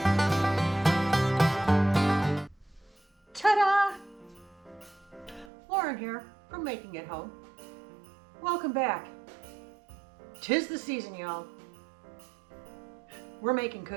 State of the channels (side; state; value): left; drops out; at 5.5 s